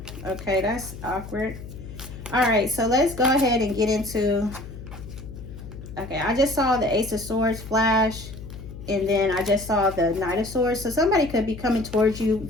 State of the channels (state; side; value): noise; left; hum, 13 dB below the sound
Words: Okay, that's awkward. All right, so let's go ahead and get into, okay, I just saw the Ace of Swords flash, and then I just saw the Knight of Swords. So somebody could be coming towards you